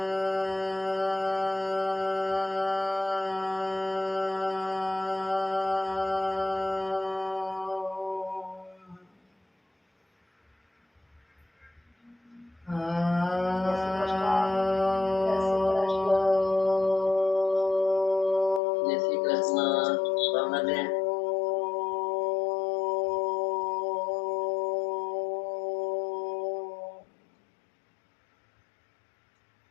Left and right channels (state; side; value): drops out; right; at 18.6 s